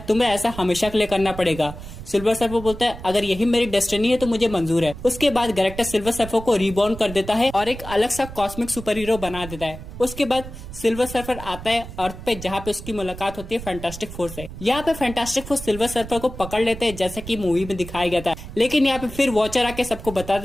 तुम्हें ऐसा हमेशा के लिए करना पड़ेगा। सिल्वर सर्फर बोलता है अगर यही मेरी डेस्टिनी है तो मुझे मंजूर है। उसके बाद गैलेक्टस सिल्वर सर्फर को रीबॉर्न कर देता है और एक अलग सा कॉस्मिक सुपर हीरो बना देता है। उसके बाद सिल्वर सर्फर आता है अर्थ पे, जहाँ पे उसकी मुलाकात होती है फैंटास्टिक फोर से। यहाँ पे फैंटास्टिक फोर सिल्वर सर्फर को पकड़ लेते हैं, जैसा कि मूवी में दिखाया गया था। लेकिन यहाँ पे फिर वॉचर आके सबको बता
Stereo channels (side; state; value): right; noise; rumble, 12 dB below the sound